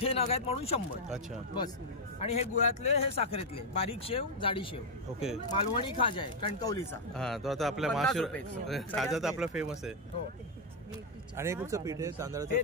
नग आहेत म्हणून 100. अच्छा. बस. आणि हे गुळातले, हे साखरेतले. बारीक शेव, जाडी शेव. ओके. मालवणी खाजा आहे कणकवलीचा. हा, तो आता आपल्या खाजा तर आपला फेमस आहे. हो. आणि हे कुठचं पीठ आहे? तांदळाचं? हे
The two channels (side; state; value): both; normal; correlation 0.01